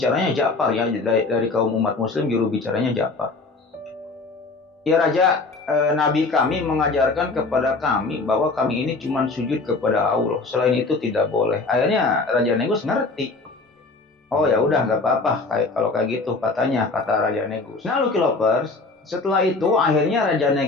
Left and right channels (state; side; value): quieter; right; 3.7 dB